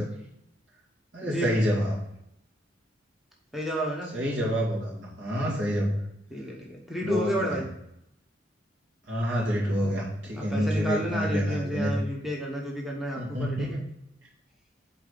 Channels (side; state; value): both; normal; correlation 0.77